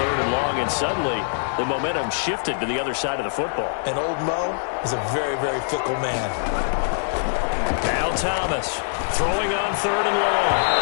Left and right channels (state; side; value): silent; right; digital silence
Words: and long, and suddenly the momentum shifted to the other side of the football. And old Mo is a very, very fickle man. Now Thomas throwing on 3rd and long.